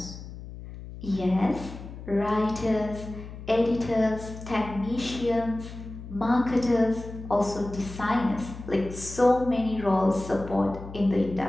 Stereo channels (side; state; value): left; noise; hum, 12 dB below the sound